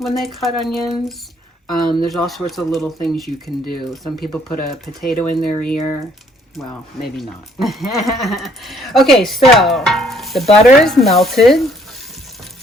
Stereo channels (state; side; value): normal; both; correlation 0.64